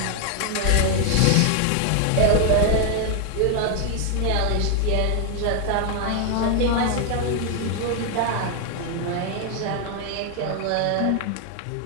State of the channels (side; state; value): both; different; correlation 0.00